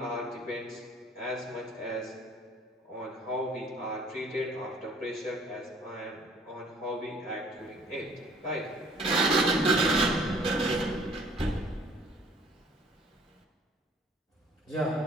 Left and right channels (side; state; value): both; normal; correlation 0.55